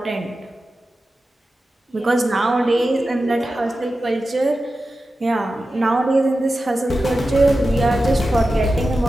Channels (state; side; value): normal; both; correlation 0.93